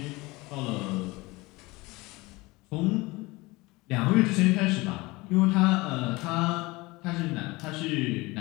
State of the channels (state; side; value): quieter; right; 22.6 dB